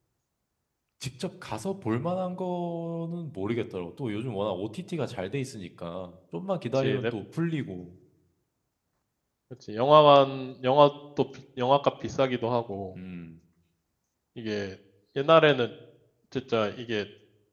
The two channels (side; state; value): both; identical; correlation 1.00